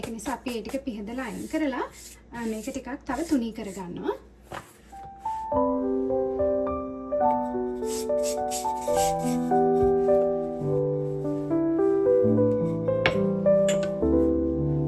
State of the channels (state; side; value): identical; both; correlation 1.00